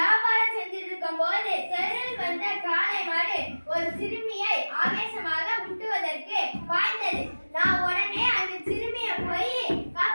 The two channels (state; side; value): inverted; both; correlation -1.00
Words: செஞ்சிருக்கும் போது தெருவில் வந்த காளை மாடு ஒரு சிறுமியை ஆவேசமாக முட்டுவதற்கு பாய்ந்தது. நான் உடனே அந்த சிறுமியை போய்